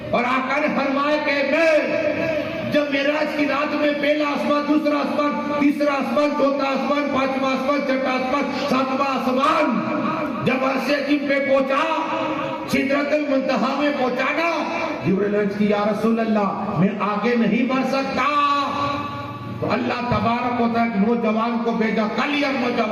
اور آقا نے فرمایا کہ میں جب معراج کی رات میں پہلا آسمان, دوسرا آسمان, تیسرا آسمان, چوتھا آسمان, پانچواں آسمان, چھٹا آسمان, ساتواں آسمان جب عرش عظیم پہ پہنچا, سدرۃ المنتہا میں پہنچانا, جبرائیل عرض کی یا رسول اللہ میں آگے نہیں بڑھ سکتا. تو اللہ تبارک و تعالیٰ نوجوان کو بھیجا, کلیئر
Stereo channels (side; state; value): both; identical; correlation 1.00